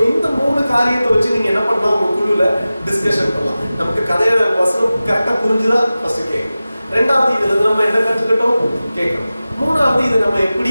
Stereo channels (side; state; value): both; inverted; correlation -0.96